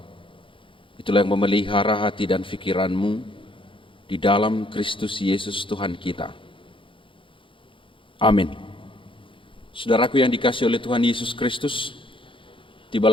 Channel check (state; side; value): late; right; 0.25 ms